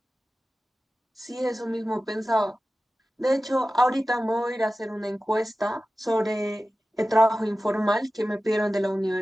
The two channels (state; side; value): normal; both; correlation 0.95